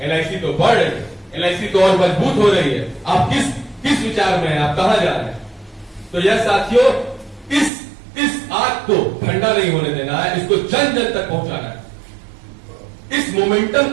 एलआईसी तो बढ़ रही है, एलआईसी तो और मजबूत हो रही है। आप किस विचार में हैं, आप कहां जा रहे हैं? तो यह साथियों, इस आग को ठंडा नहीं होने देना है, इसको जन जन तक पहुंचाना है, इस मोमेंटम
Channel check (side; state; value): left; drops out; at 7.7 s